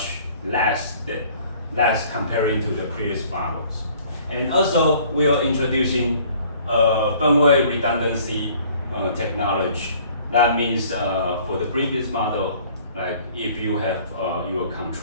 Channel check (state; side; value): inverted; both; correlation -0.55